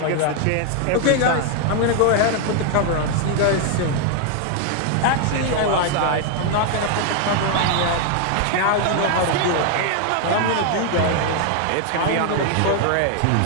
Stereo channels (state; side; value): different; both; correlation 0.00